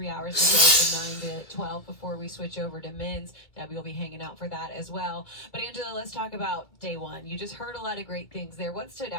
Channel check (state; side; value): late; right; 2.4 ms